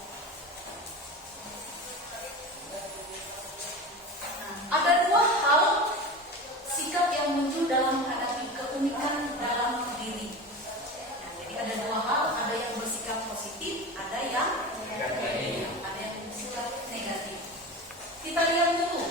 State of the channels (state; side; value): normal; both; correlation 0.29